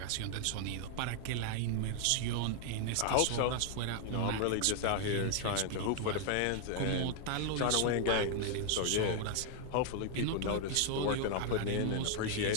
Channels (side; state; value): both; different; correlation 0.00